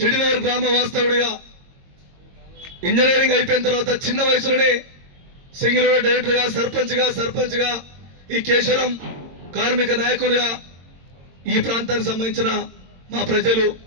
గ్రామ వాస్తవుడిగా, ఇంజనీరింగ్ అయిపోయిన తర్వాత చిన్న వయసులోనే సింగిల్ డైరెక్టర్గా, సర్పంచ్గా ఈ కేశవరం కార్మిక నాయకునిగా ఈ ప్రాంతానికి సంబంధించిన మా ప్రజలు,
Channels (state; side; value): late; left; 22 ms